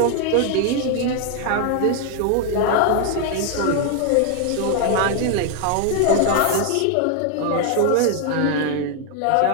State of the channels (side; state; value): both; different; correlation 0.00